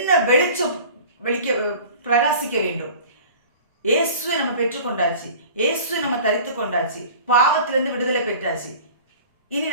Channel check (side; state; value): both; inverted; correlation -0.42